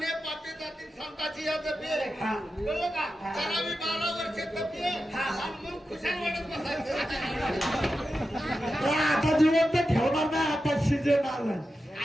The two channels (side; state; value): both; normal; correlation 0.91